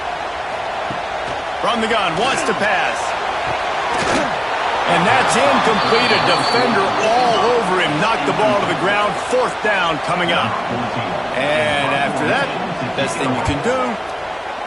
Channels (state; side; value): identical; both; correlation 1.00